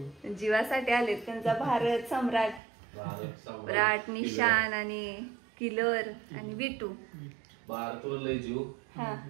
जीवासाठी आलेत. त्यांचा भारत सम्राट, निशान आणि किलर आणि विटू. भारतवर जीव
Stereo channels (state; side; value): drops out; left; at 2.6 s